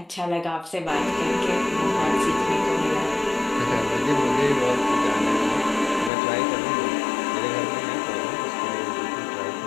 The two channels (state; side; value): drops out; right; at 6.1 s